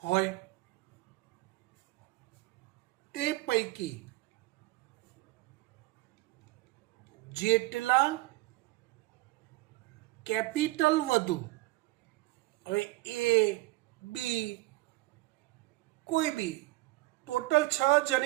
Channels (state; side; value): quieter; left; 20.0 dB